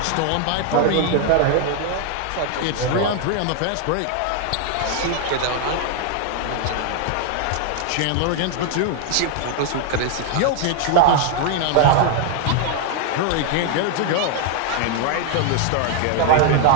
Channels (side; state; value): both; different; correlation 0.00